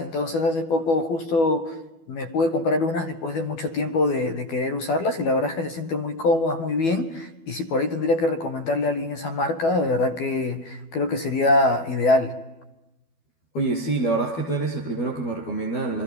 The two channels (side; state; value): right; late; 12 ms